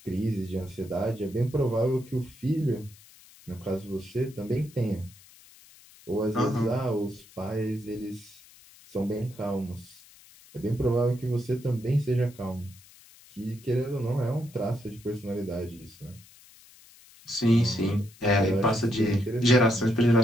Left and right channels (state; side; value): noise; left; hiss, 24 dB below the sound